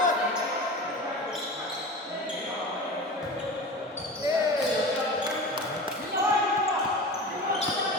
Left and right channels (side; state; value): both; normal; correlation 0.32